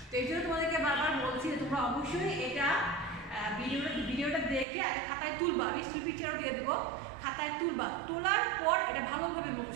তো এই জন্য তোমাদেরকে বারবার বলছি যে তোমরা অবশ্যই এটা ভিডিওটা দেখে আগে খাতায় তুলবা, আমি স্ক্রিন পিকচারও দিয়ে দেবো, খাতায় তুলবা, তোলার পর এটা ভালোভাবে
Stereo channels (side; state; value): left; drops out; at 4.7 s